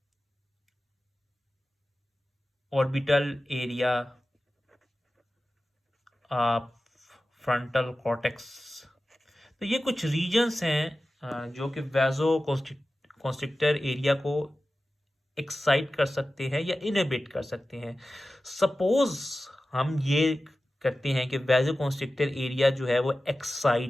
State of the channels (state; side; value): normal; both; correlation 0.95